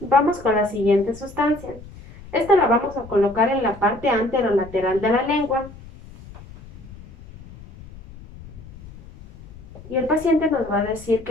con la siguiente sustancia. Esta la vamos a colocar en la parte anterolateral de la lengua. Y el paciente nos va a decir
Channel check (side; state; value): left; noise; rumble, 18 dB below the sound